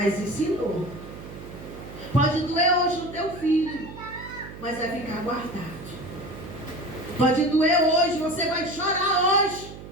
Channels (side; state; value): right; noise; hum, 14 dB below the sound